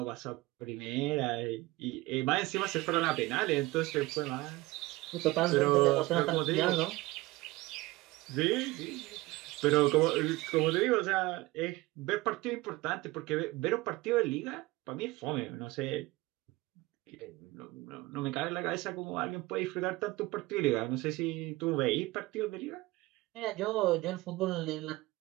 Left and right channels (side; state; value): left; quieter; 20.3 dB